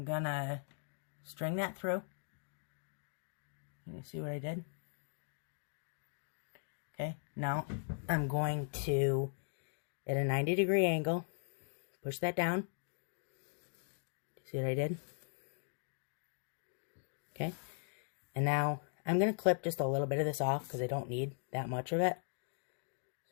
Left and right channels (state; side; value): silent; right; digital silence